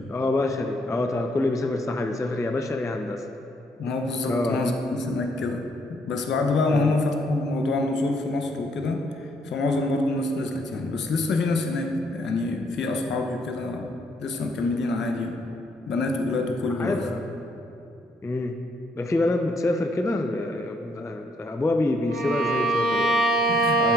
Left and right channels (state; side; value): normal; both; correlation 0.71